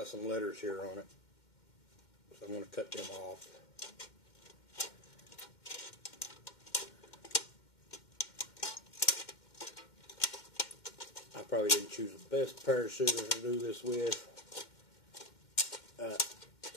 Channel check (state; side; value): late; right; 2.1 ms